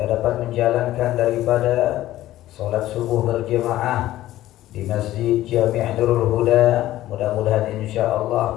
dapat menjalankan daripada salat subuh berjamaah di Masjid Jami' Nurul Huda. Mudah-mudahan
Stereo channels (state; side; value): quieter; right; 14.6 dB